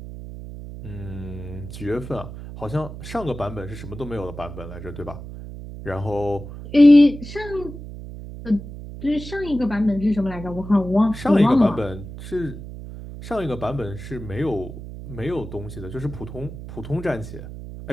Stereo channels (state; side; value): noise; right; hum, 11 dB below the sound